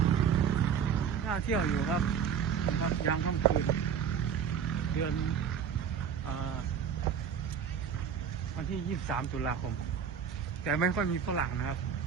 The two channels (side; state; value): left; quieter; 7.6 dB